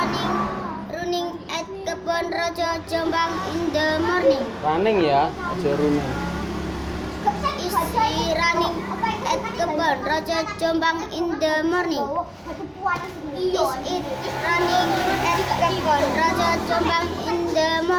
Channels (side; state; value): both; identical; correlation 1.00